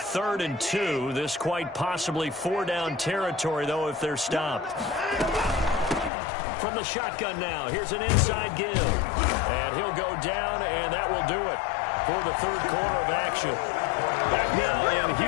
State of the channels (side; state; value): right; drops out; at 6.1 s